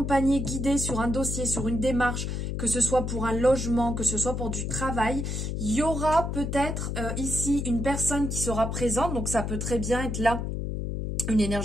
guidé sur un dossier, sur une démarche, que ce soit pour un logement, que ce soit pour du travail. Il y aura peut-être ici une personne qui sera présente, donc ça peut très bien être là une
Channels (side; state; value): left; noise; hum, 3 dB below the sound